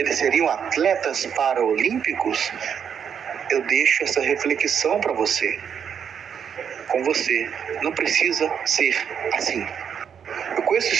seriam atletas paraolímpicos? Eu deixo essa reflexão para você. Com você, não precisa ser assim. Eu conheço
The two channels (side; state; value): left; quieter; 7.7 dB